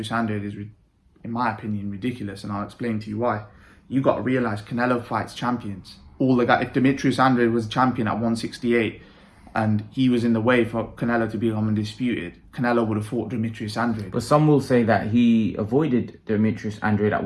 Andrade is, in my opinion, ridiculous. And I'll explain to you why. You got to realise Canelo fights champions. If Demetrius Andrade was a champion at 168 and he was in the way for Canelo to become undisputed, Canelo would have fought Demetrius Andrade. But some will say that he avoided Demetrius Andrade at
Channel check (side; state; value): both; identical; correlation 1.00